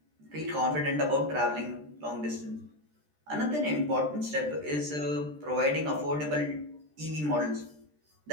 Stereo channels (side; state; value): left; late; 13 ms